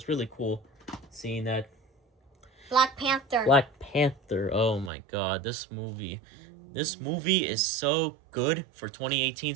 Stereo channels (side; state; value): left; drops out; at 4.9 s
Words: really cool seeing that. Black Panther. Black Panther. Oh my God, this movie is so good for 2018